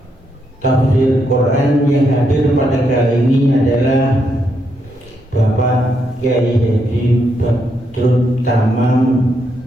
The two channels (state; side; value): normal; both; correlation 0.79